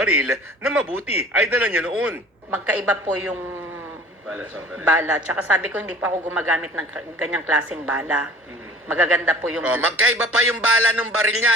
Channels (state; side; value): normal; both; correlation 0.46